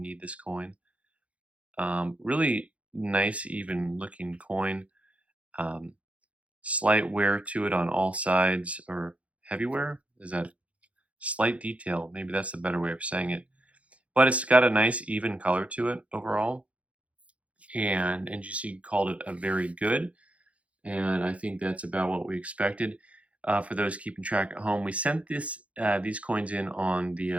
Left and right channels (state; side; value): late; left; 0.064 ms